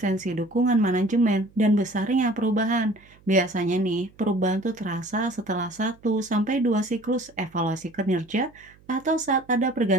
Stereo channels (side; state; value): right; noise; hum, 28 dB below the sound